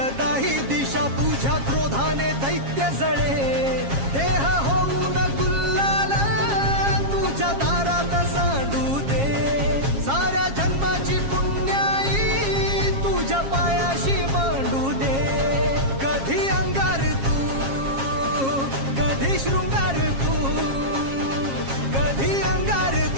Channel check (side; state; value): left; late; 7.4 ms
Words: दिशा, तुझ्या क्रोधाने दैत्य जळे, देह होऊन गुल्लाल तुझ्या दारात सांडू दे, साऱ्या जन्माची पुण्याई तुझ्या पायाशी मांडू दे, कधी अंगार तू कधी शृंगार तू, कधी अंगार